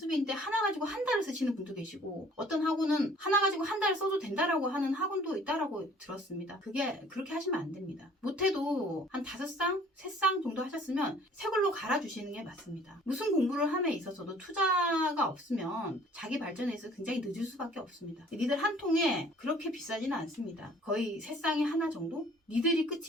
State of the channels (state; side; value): normal; both; correlation 0.54